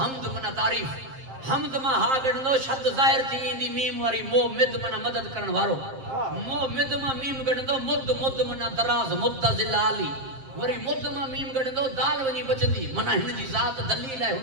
منا تعریف حمد ما ہا گڑندو شد ظاہر تھی اندی میم واری مو مد منا مدد کرن وارو مو مد ما میم گڑندو مد منا دراز مدزل علی وری مد ما میم گڑندو دال ونی بچندی منا ہن جی ذات دلیل ہے ہن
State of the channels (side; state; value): left; late; 7.6 ms